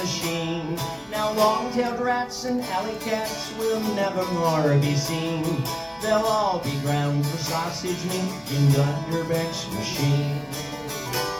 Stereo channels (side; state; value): both; identical; correlation 1.00